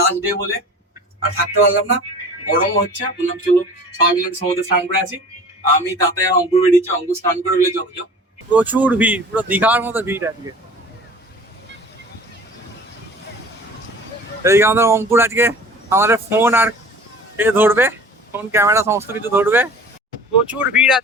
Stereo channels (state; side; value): normal; both; correlation 0.43